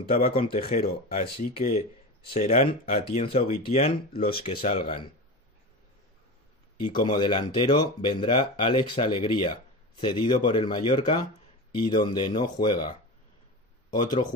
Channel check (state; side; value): normal; both; correlation 0.26